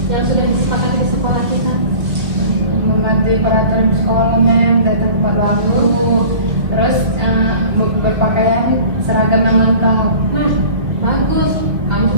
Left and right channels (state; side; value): late; left; 2.5 ms